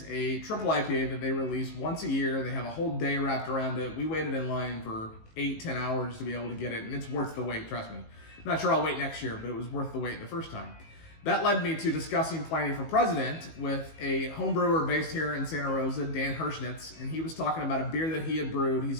a triple IPA that they release once a year. They have a whole day wrapped around it. We waited in line for 8-10 hours to be able to get it, and it's worth the wait, trust me. I'm not sure I'll wait next year, but it was worth the wait the first time. That led me to discussing Pliny for President with a home brewer based here in Santa Rosa, Dan Hirschbrau, and he was talking about a beer that he had brewed. He's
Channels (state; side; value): late; right; 19 ms